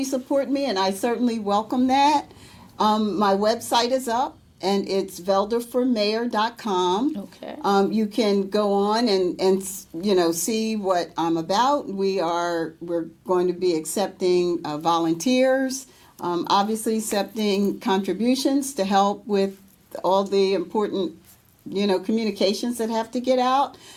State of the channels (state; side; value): identical; both; correlation 1.00